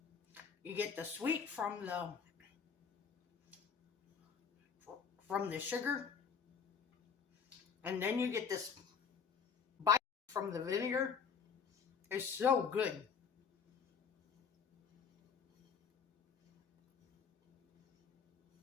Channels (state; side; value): quieter; right; 6.3 dB